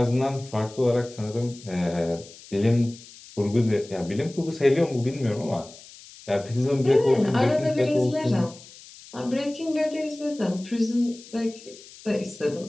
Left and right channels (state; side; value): noise; left; hiss, 20 dB below the sound